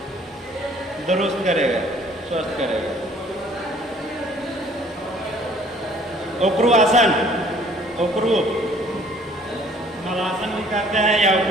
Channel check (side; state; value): both; normal; correlation 0.56